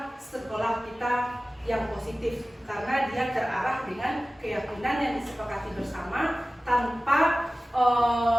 sekolah kita yang positif, karena dia terarah dengan keyakinan yang disepakati bersama tanpa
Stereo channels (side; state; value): both; normal; correlation 0.97